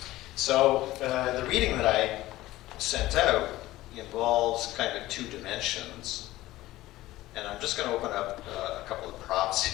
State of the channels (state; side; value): quieter; right; 16.8 dB